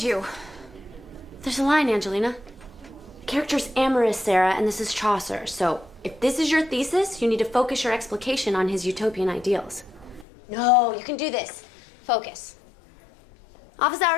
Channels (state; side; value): drops out; right; at 10.2 s